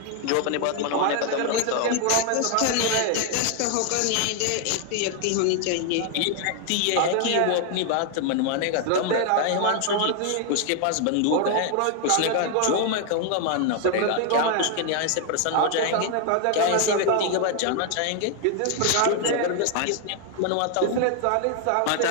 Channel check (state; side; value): different; both; correlation 0.00